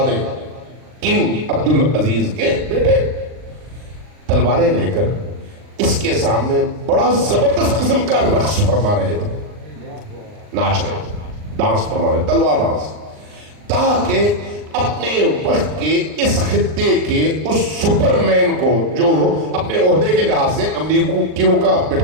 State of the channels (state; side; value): late; left; 39 ms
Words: کنگ عبدالعزیز کے بیٹے تلواریں لے کر اس کے سامنے بڑا زبردست قسم کا رقص فرما رہے تھے، ناچ رہے تھے، ڈانس فرما رہے، تلوار ڈانس، تاکہ اپنے وقت کے اس خطے کے اس سپر مین کو جو اپنے عہدے کے لحاظ سے امریکیوں کا